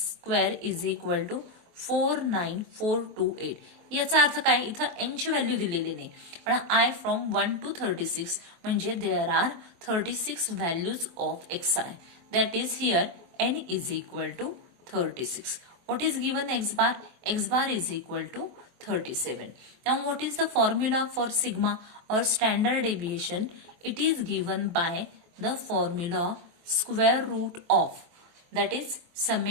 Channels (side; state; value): left; late; 23 ms